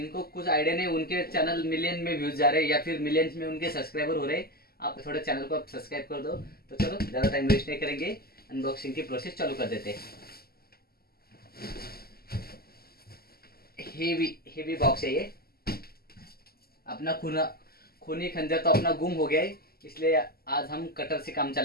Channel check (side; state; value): right; late; 0.45 ms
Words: कुछ आइडिया नहीं, उनके चैनल मिलियन में व्यूज जा रहे हैं या फिर मिलियंस में उनके सब्सक्राइबर हो रहे हैं। आप थोड़े चैनल को आप सब्सक्राइब कर दो। तो चलो ज़्यादा टाइम वेस्ट नहीं करेंगे, अनबॉक्सिंग की प्रोसेस चालू कर देते हैं। हेवी हेवी बॉक्स है ये। अपना खूनी खंजर तो अपना गुम हो गया है, इसलिए आज हम कटर से काम